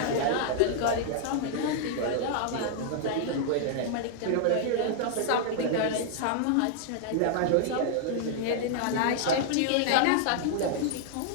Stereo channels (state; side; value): different; both; correlation -0.01